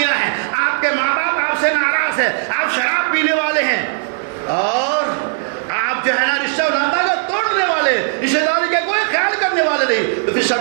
ہے، آپ کے ماں باپ آپ سے ناراض ہے، آپ شراب پینے والے ہیں اور آپ جو ہے نا رشتہ ناتا کا توڑنے والے، رشتہ داری کا کوئی خیال کرنے والے نہیں، تو پھر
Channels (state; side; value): silent; left; 68 dB below the other